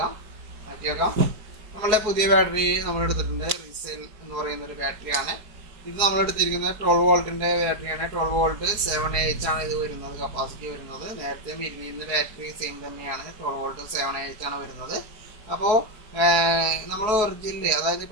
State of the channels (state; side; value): late; left; 4.6 ms